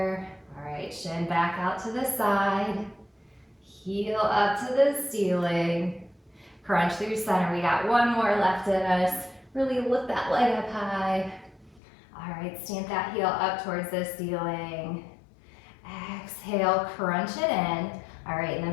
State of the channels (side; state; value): right; drops out; at 11.8 s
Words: All right, shin back out to the side, heel up to the ceiling, crunch through center. We got one more left in us. Really lift that leg up high. All right, stamp that heel up towards the ceiling. Exhale, crunch it in. All right, and